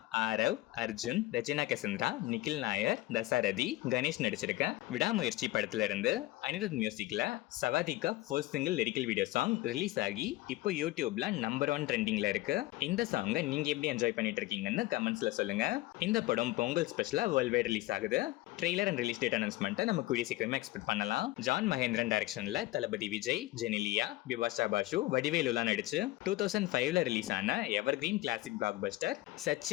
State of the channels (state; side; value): quieter; right; 18.2 dB